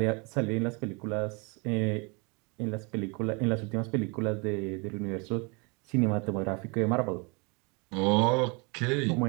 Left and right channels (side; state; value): left; quieter; 31.1 dB